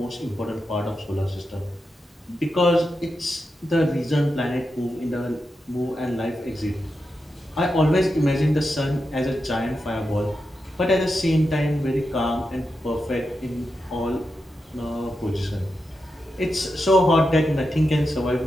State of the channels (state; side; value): normal; both; correlation 0.88